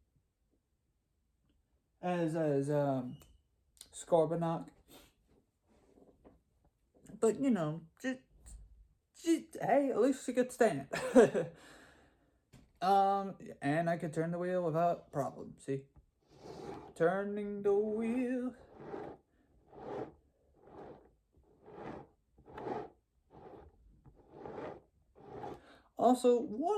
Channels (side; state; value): both; identical; correlation 1.00